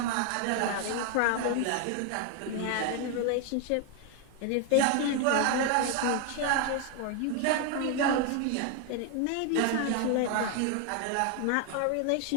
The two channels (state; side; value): different; both; correlation 0.01